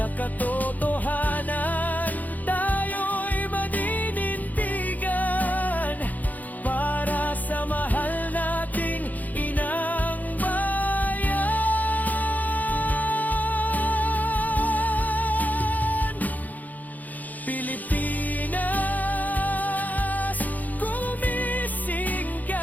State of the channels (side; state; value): right; late; 0.081 ms